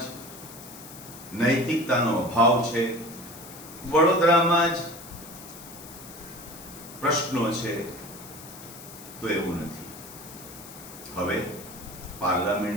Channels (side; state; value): left; noise; hiss, 16 dB below the sound